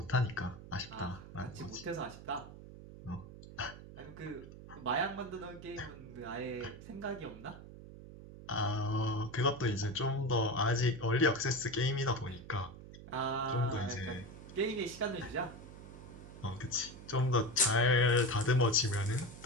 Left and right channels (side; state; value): right; noise; hum, 15 dB below the sound